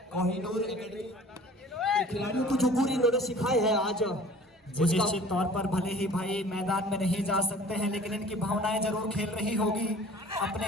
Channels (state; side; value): normal; both; correlation 0.47